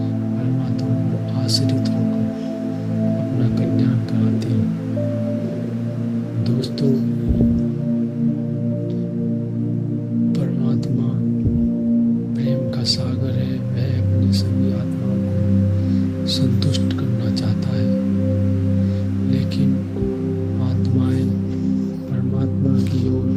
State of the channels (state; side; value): identical; both; correlation 1.00